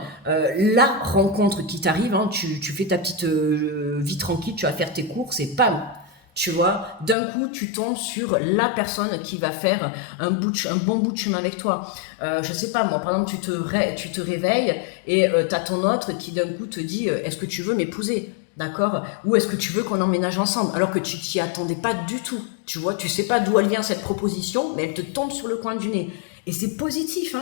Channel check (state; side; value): drops out; right; at 7.2 s